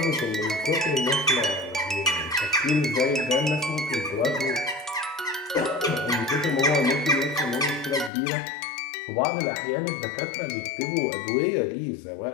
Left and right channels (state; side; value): drops out; right; at 8.1 s